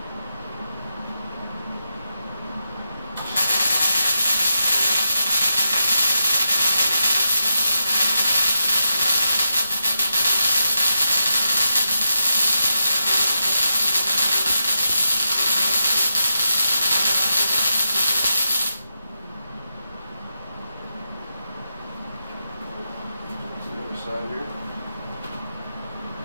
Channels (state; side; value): inverted; both; correlation -0.85